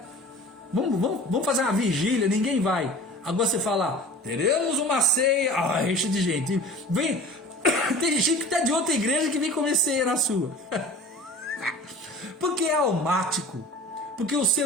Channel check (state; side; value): normal; both; correlation 0.40